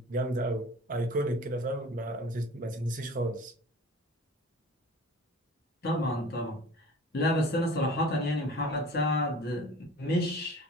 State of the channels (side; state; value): both; normal; correlation 0.43